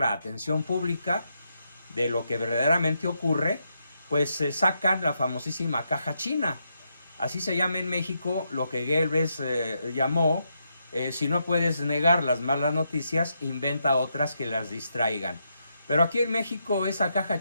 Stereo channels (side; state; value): both; inverted; correlation -0.81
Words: atención pública de lo que verdaderamente ocurre, pues se sacan la famosísima caja china. Así se llama en México lo que Goebbels llamó, si no puedes negar las malas noticias, inventa otras que las distraigan. Pero aquí en México esa caja